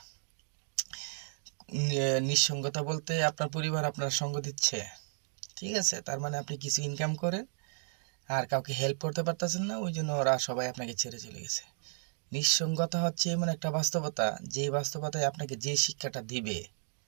নিঃসঙ্গতা বলতে আপনার পরিবার আপনার সঙ্গ দিচ্ছে, ঠিক আছে, তার মানে আপনি কিছু ইনকাম করেন আর কাউকে হেল্প করতে পারতেছেন না, ওই জন্য ওরা সবাই আপনাকে ছেড়ে চলে গেছে। নিঃসঙ্গতা হচ্ছে এমন একটা বাস্তবতা, যে বাস্তবতায় আপনাকে যে শিক্ষাটা দিবে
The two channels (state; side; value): silent; left; 55 dB below the other